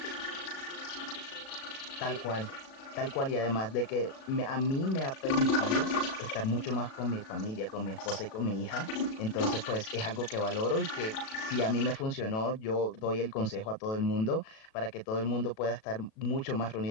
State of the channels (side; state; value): right; late; 37 ms